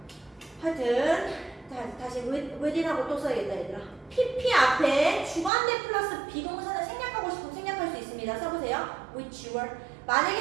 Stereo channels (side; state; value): left; drops out; at 5.5 s